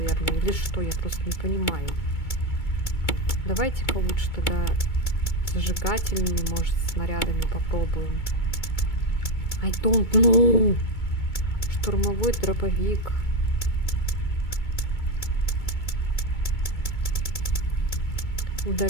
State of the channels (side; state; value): right; late; 2.2 ms